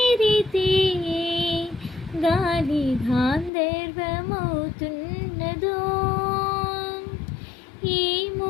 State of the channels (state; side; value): drops out; right; at 3.5 s